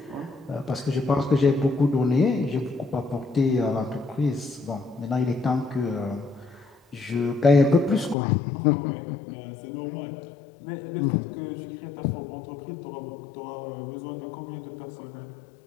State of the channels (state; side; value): drops out; right; at 8.2 s